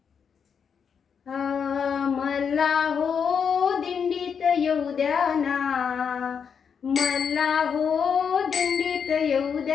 मला हो दिंडीत येऊ द्या ना, मला हो दिंडीत येऊ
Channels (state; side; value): quieter; right; 6.8 dB